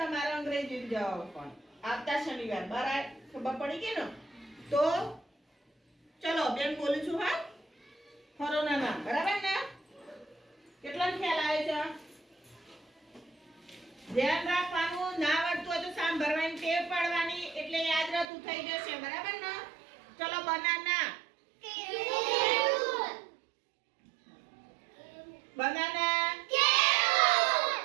અંગ્રેજી જવાબ પણ આવતા શનિવાર બરાબર ખબર પડી ગઈ ને? તો ચલો બેન બોલું છું હા ખરોના નામ બરાબર ને? કેટલા ખ્યાલ આવે છે? ધ્યાન રાખવાનું ના આવડતું હોય તો સાંભળવાની ટેવ પાડવાની એટલે યાદ રહેતું થઈ જશે બરાબર ને? ચલો બનાના બનાના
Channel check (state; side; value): drops out; left; at 18.2 s